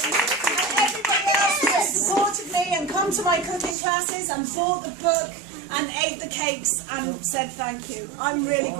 And come to my cooking classes and bought the book and ate the cakes and said thank you. I'm really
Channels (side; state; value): left; drops out; at 3.8 s